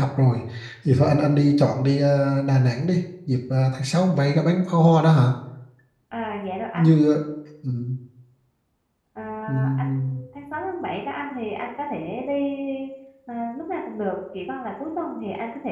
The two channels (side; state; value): both; identical; correlation 1.00